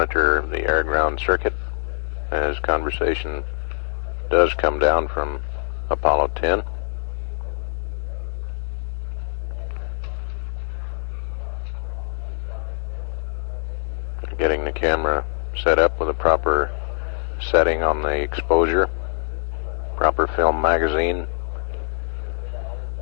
the air-ground circuit as conversation does come down from Apollo 10. Getting the camera set up with a proper setting on the exposure, proper film magazine,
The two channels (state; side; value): silent; right; 63 dB below the other